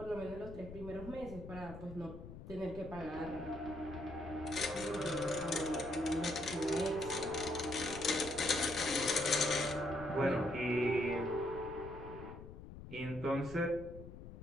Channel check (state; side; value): noise; left; rumble, 12 dB below the sound